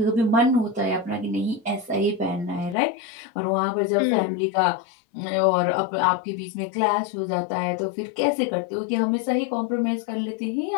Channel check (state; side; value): drops out; right; at 2.8 s